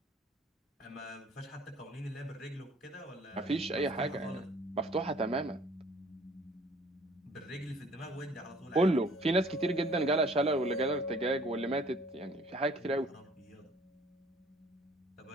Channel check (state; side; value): normal; both; correlation 0.55